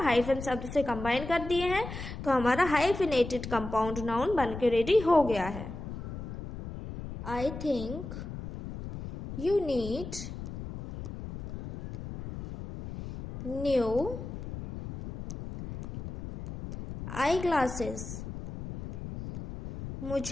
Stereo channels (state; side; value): noise; left; rumble, 9 dB below the sound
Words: हाइफन शब्द से कंबाइन कर दिए हैं, तो हमारा हाइफिनेटेड कंपाउंड नाउन बन के रेडी हो गया है। I think you need new eye glasses.